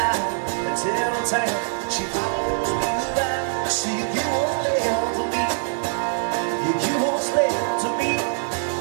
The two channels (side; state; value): left; silent; digital silence